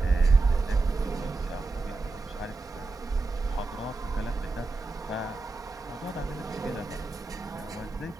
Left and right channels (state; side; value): quieter; left; 3.6 dB